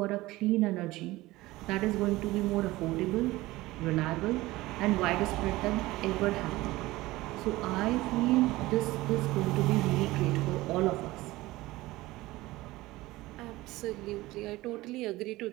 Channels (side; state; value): left; quieter; 18.8 dB